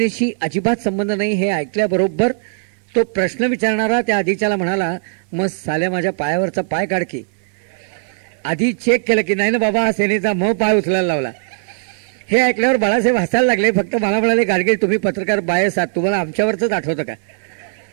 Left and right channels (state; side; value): silent; left; digital silence